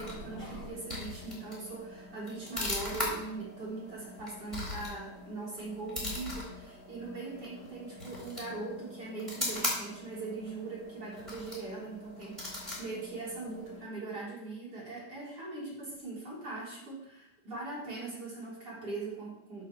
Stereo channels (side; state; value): left; late; 5.0 ms